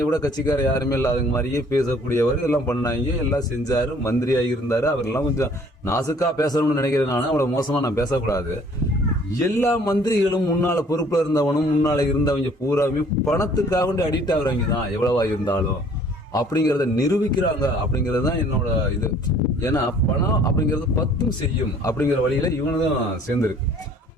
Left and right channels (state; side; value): normal; both; correlation 0.56